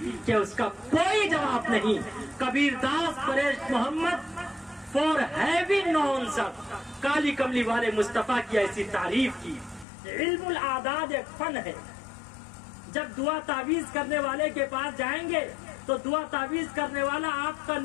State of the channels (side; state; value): right; drops out; at 9.9 s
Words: کہ اس کا کوئی جواب نہیں۔ کبیر داس پریش محمد فور ہیونگ نون سب، کالی کملی والے مصطفیٰ کی ایسی تعریف کی۔ علم الاعداد ایک فن ہے۔ جب دعا تعویذ کرنے والے کے پاس جائیں گے تو دعا تعویذ کرنے والا آپ کا